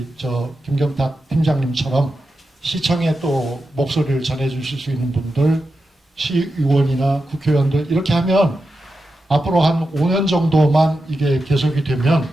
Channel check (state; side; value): normal; both; correlation 0.90